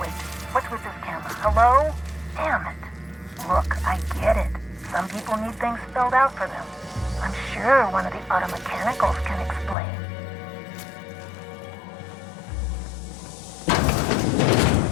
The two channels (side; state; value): right; drops out; at 9.8 s